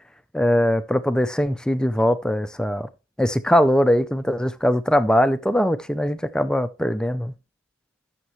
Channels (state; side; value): normal; both; correlation 0.92